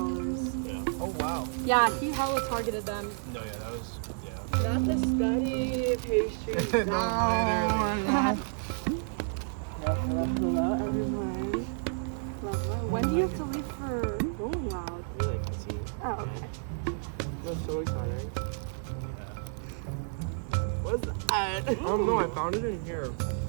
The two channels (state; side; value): silent; left; digital silence